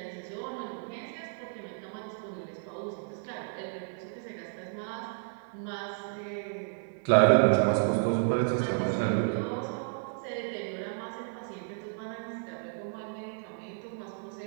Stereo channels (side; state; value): left; silent; 56 dB below the other